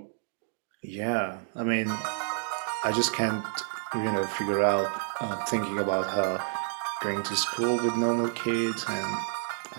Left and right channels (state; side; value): silent; left; 58 dB below the other